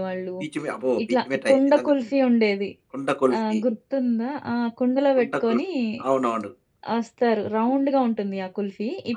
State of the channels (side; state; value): both; identical; correlation 1.00